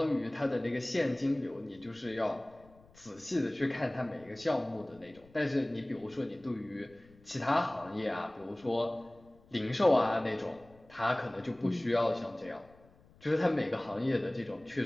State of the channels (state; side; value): noise; left; rumble, 27 dB below the sound